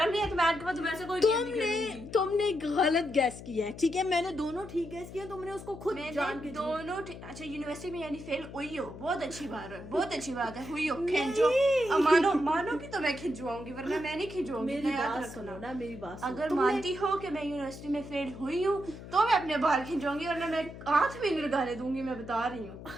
नहीं है तुम्हें के पास वैसे कोई गेम नहीं खेलूंगी। तुमने गलत गैस किया है, ठीक है, मैंने दोनों ठीक गैस किया, तुमने उसको खुद जान के दोनों अच्छा यूनिवर्सिटी में यानी फेल हुई हो, बहुत अच्छी बात है, बहुत अच्छी बात है, हुई हो, खिंचो। मानो कि तो मैं खिंचवाऊंगी, वरना मैं नहीं खिंचवाऊंगी। मेरी बात सुनो ना, मेरी बात सुनो। अगर मानती हो कि मैं यूनिवर्सिटी में फेल हुई हूँ तो मैं अपने बाल खिंचवाऊंगी, वरना मैं हाथ भी नहीं लगाने दूंगी, मैं बता रही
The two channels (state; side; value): noise; left; hum, 13 dB below the sound